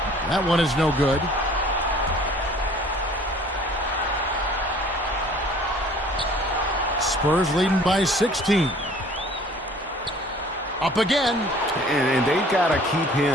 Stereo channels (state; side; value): normal; both; correlation 0.52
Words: That one is no good. Spurs leading by 16. Up again. And they've got to keep